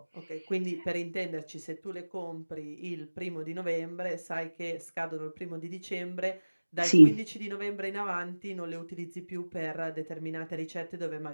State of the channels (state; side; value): inverted; both; correlation -1.00